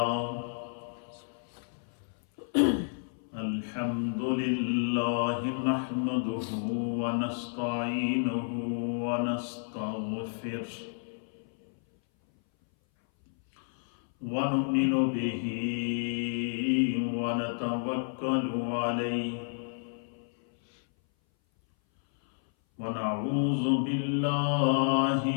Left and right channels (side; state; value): right; silent; 57 dB below the other